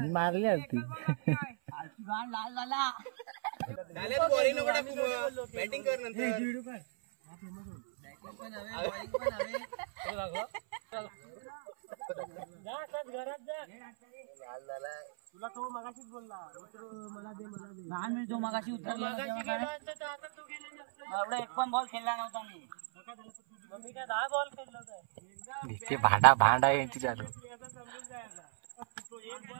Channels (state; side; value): silent; left; 54 dB below the other